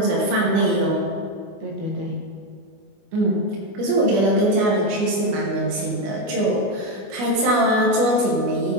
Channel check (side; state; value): left; late; 21 ms